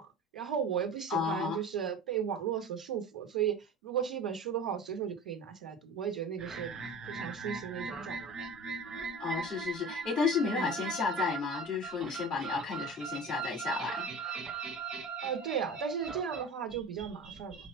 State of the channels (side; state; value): both; normal; correlation 0.36